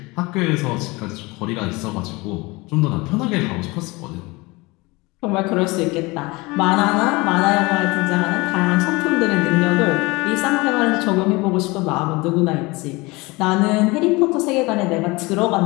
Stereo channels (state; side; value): quieter; right; 23.8 dB